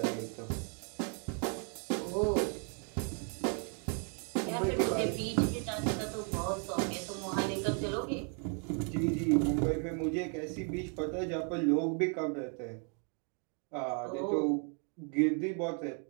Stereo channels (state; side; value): quieter; left; 38.7 dB